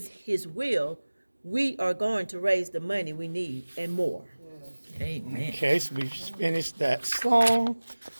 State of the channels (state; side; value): inverted; both; correlation -1.00